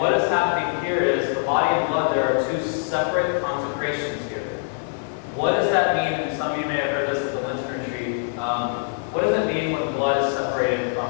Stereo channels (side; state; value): right; silent; 63 dB below the other